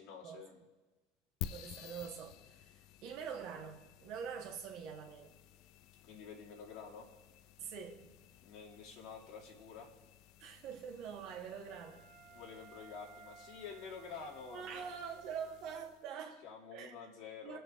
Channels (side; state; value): both; normal; correlation 0.35